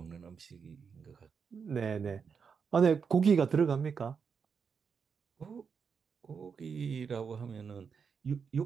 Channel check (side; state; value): left; quieter; 6.1 dB